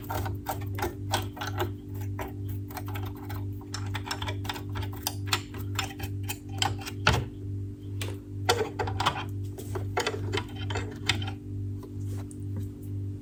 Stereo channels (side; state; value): both; identical; correlation 1.00